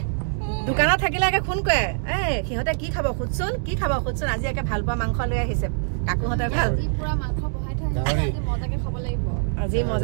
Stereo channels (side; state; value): left; silent; digital silence